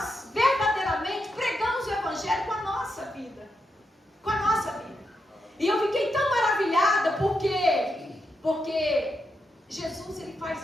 verdadeiramente pregamos o evangelho com a nossa vida, com a nossa vida. E eu fiquei tão maravilhada porque Jesus, ele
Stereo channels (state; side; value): normal; both; correlation 0.84